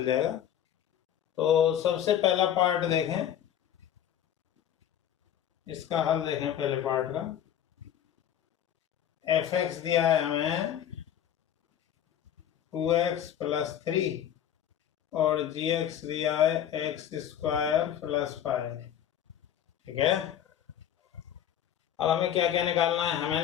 जाएगा। तो सबसे पहला पार्ट देखें, इसका हल देखें। पहले पार्ट का एफ एक्स दिया है हमें 2x + 3 और जी एक्स दिया है x² + 5। ठीक है, अब हमें क्या क्या निकालना है? हमें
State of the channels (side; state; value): right; quieter; 10.2 dB